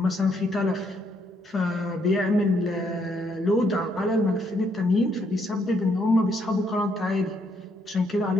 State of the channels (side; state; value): both; normal; correlation 0.73